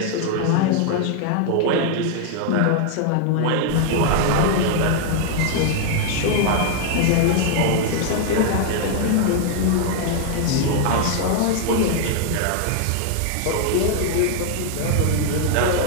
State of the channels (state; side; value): different; both; correlation 0.00